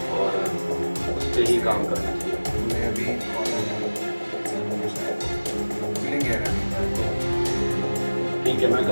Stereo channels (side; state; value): both; inverted; correlation -1.00